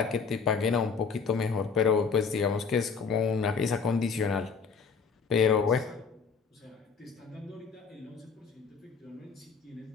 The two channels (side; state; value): right; quieter; 5.6 dB